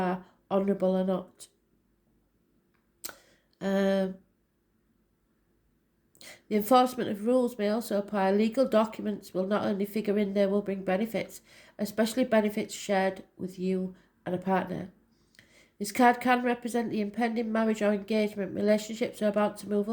honourable or not. The enforcement of rules may also apply. Legal documents will not only figure in, they will bring benefits, especially benefits shared with you and a partner. This card can represent the impending marriage or engagement. Relationships are about to move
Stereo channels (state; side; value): identical; both; correlation 1.00